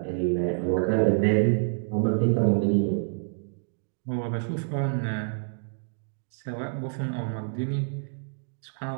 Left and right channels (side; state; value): left; silent; digital silence